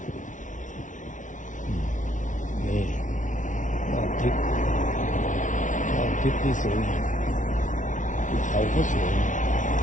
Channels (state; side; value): late; right; 0.37 ms